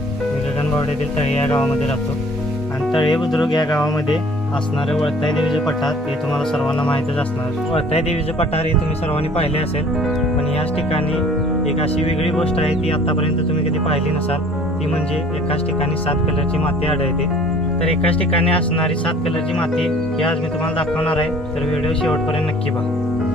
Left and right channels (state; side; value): normal; both; correlation 0.52